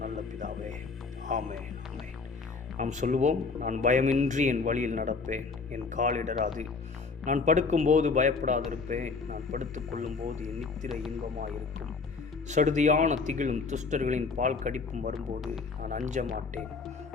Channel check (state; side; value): quieter; right; 4.5 dB